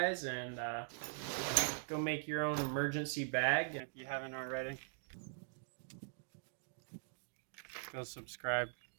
and go make your own emergency bag if you haven't already. Go subscribe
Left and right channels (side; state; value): left; silent; digital silence